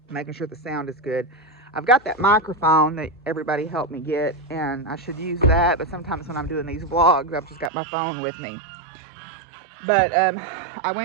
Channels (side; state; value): left; drops out; at 7.7 s